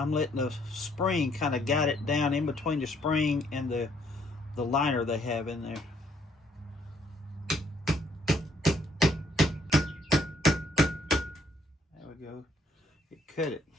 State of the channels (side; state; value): both; normal; correlation 0.67